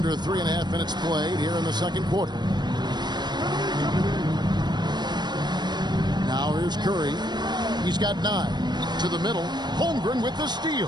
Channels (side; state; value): left; late; 0.21 ms